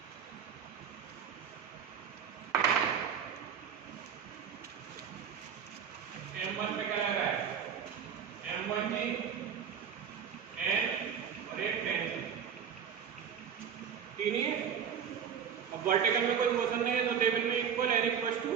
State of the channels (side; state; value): left; quieter; 7.7 dB